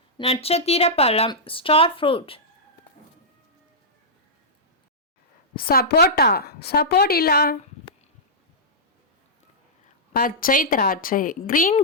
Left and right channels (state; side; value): normal; both; correlation -0.12